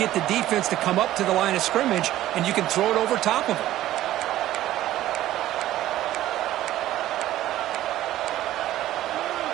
the defense to come up to the line of scrimmage, and you can throw it over top of them.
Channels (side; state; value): left; quieter; 14.1 dB